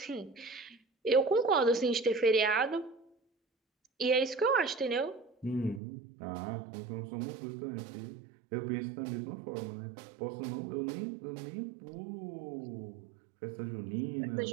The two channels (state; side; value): drops out; left; at 5.8 s